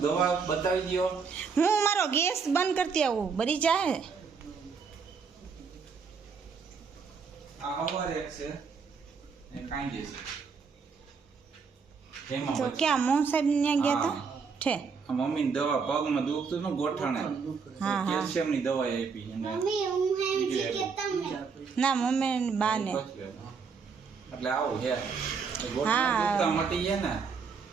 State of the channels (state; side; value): quieter; left; 5.5 dB